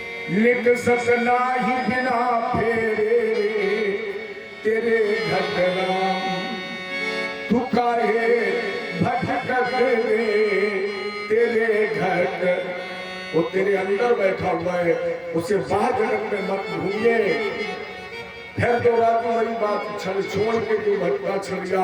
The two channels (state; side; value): identical; both; correlation 1.00